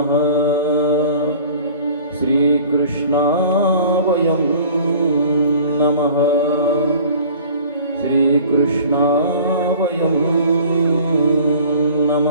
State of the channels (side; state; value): both; inverted; correlation -0.46